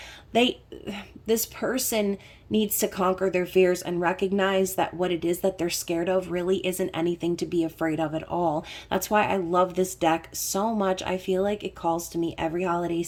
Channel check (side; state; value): both; identical; correlation 1.00